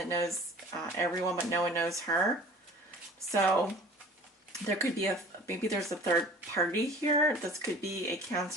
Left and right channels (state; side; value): normal; both; correlation 0.45